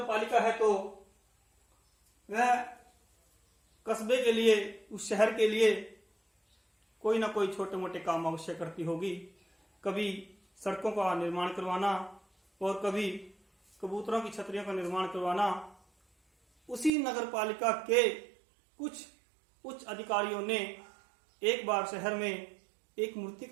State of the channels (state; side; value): drops out; left; at 16.9 s